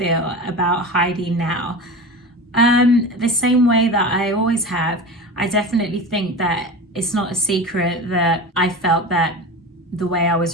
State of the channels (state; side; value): normal; both; correlation 0.30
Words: about Heidi now? The same way that I always have. I definitely think that it's not a secret that I felt that the way I